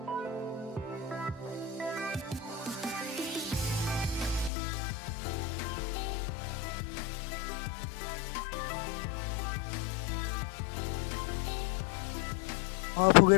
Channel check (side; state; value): right; drops out; at 4.5 s